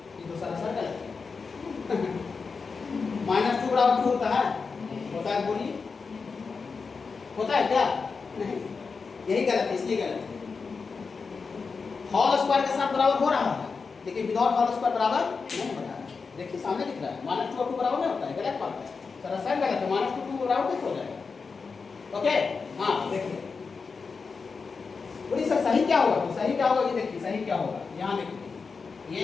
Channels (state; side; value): quieter; right; 4.9 dB